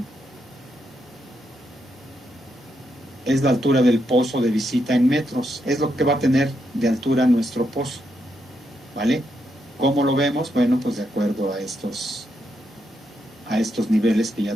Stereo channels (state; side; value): normal; both; correlation 0.81